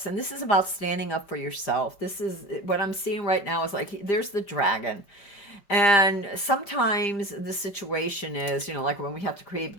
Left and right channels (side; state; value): right; late; 5.0 ms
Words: and this is about standing up for yourself. This is what I'm seeing right now is like there's the dragon. And sometimes the situation is, like when we have to create